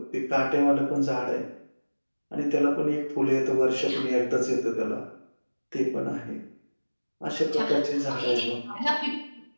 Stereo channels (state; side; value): inverted; both; correlation -1.00